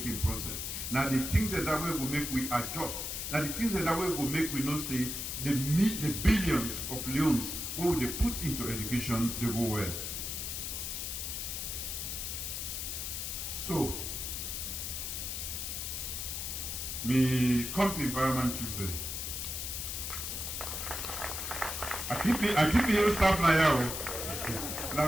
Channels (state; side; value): noise; left; hiss, 4 dB below the sound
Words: process. Now the things that way will make we adjust. Now the things that way will make we know say the billions of leones what they put into education they go well. So me come to environment children. I keep me your staff now.